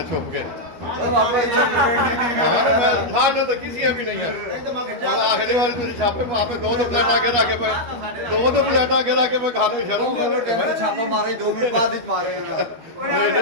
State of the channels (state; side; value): late; left; 12 ms